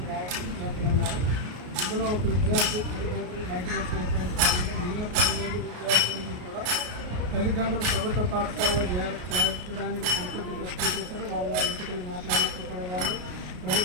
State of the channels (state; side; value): late; left; 33 ms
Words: విద్యార్థులు ఉన్నారు. ఇందులో ఒక విద్యార్థి తల్లిదండ్రులు మైగ్రేషన్ అయిపోయిన మిగిలిన 10 మంది విద్యార్థులకి కూడా తల్లిదండ్రులు ప్రభుత్వ పాఠశాలలో చేర్చడానికి సంతృప్తి వ్యక్తం చేశారు. వారి ఇంటికి వెళ్ళి మాట్లాడినప్పుడు కూడా వాళ్ళు